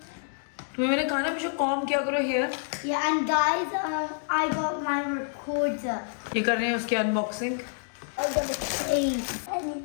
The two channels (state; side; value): silent; right; digital silence